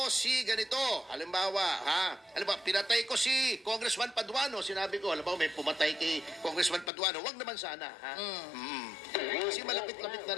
si ganito. Halimbawa, pinatay ko si Congressman Paduano. Sinabi ko, halimbawa, may pumatay kay Congressman Paduano. Wag naman sana, Kasi malapit-lapit na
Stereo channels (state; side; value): drops out; right; at 6.9 s